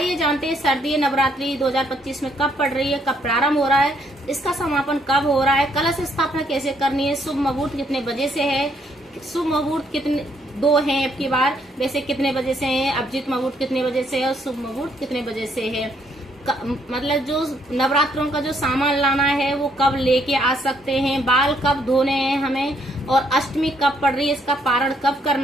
जानते हैं शारदीय नवरात्रि 2025 में कब पड़ रही है, कब प्रारंभ हो रहा है, इसका समापन कब हो रहा है, कलश स्थापना कैसे करनी है, शुभ मुहूर्त कितने बजे से है, शुभ मुहूर्त कितने दो हैं अब की बार, वैसे कितने बजे से है, अभिजीत मुहूर्त कितने बजे से है और शुभ मुहूर्त कितने बजे से है। मतलब जो नवरात्रों का जो सामान लाना है वो कब लेके आ सकते हैं, बाल कब धोने हैं हमें, और अष्टमी कब पड़ रही है, इसका पारण कब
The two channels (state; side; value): normal; both; correlation 0.70